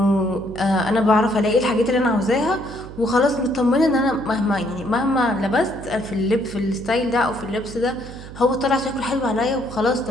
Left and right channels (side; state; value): right; noise; hum, 14 dB below the sound